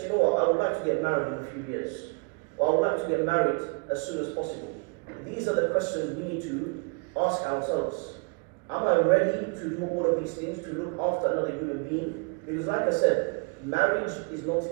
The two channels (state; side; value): quieter; left; 37.2 dB